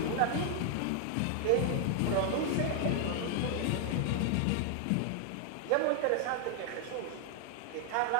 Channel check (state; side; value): different; both; correlation 0.00